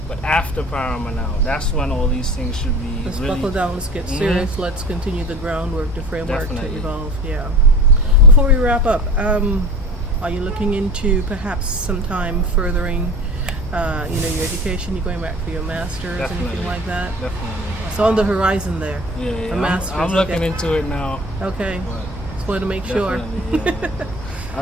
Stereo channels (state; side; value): normal; both; correlation 0.39